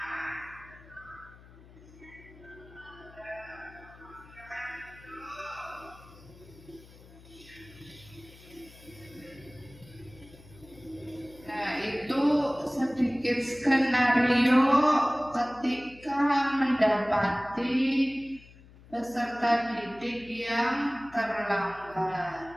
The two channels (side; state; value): left; noise; hum, 22 dB below the sound